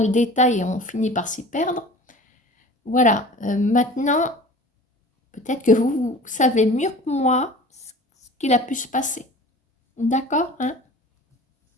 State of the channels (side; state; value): both; normal; correlation 0.42